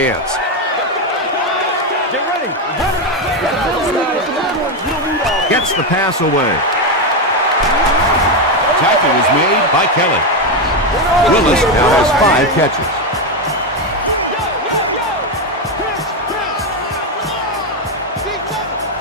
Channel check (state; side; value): normal; both; correlation 0.08